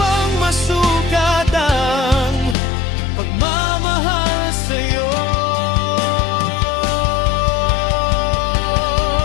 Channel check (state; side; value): drops out; right; at 2.6 s